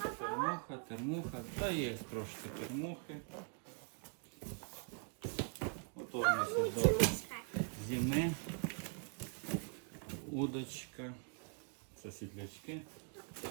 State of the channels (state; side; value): quieter; left; 39.4 dB